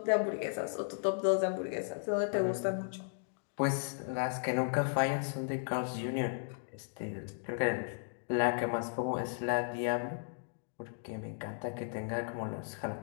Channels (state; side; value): silent; right; digital silence